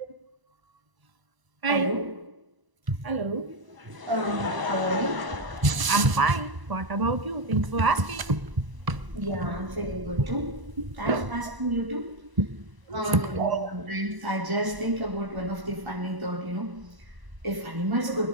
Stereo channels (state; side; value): late; left; 1.0 ms